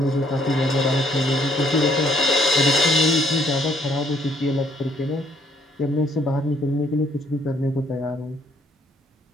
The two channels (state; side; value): normal; both; correlation 0.65